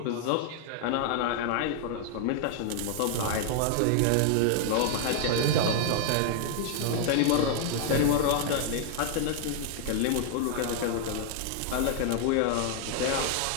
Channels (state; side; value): different; both; correlation 0.00